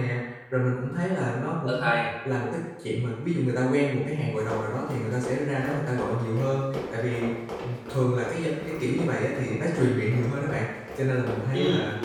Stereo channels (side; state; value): both; identical; correlation 1.00